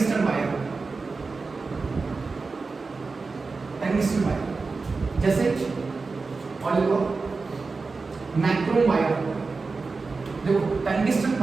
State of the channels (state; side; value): quieter; left; 4.2 dB